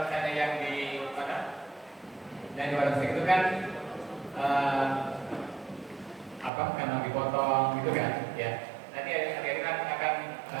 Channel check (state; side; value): drops out; left; at 6.5 s